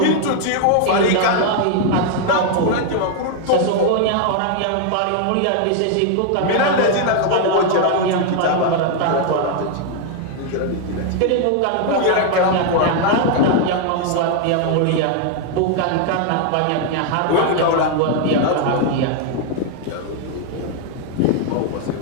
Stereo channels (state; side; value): different; both; correlation 0.00